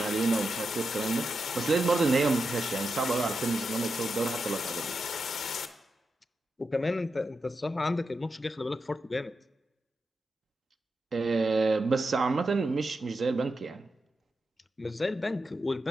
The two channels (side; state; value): both; normal; correlation 0.87